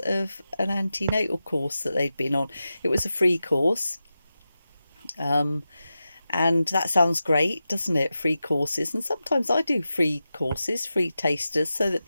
an antenatal course that they'd been on. It was a free course, and that sounds great, doesn't it? Free courses, and sometimes I do free courses, free tasters, so that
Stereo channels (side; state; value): both; inverted; correlation -0.92